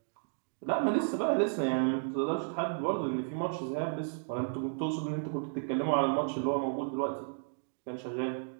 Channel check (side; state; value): left; silent; digital silence